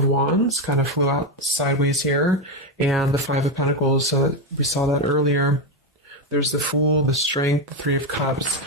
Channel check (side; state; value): both; normal; correlation 0.10